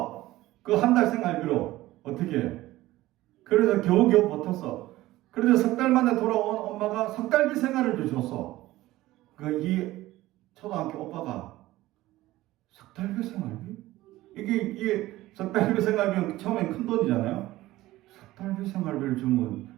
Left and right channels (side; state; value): left; quieter; 16.9 dB